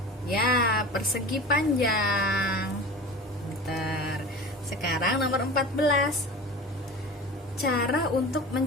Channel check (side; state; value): both; normal; correlation 0.35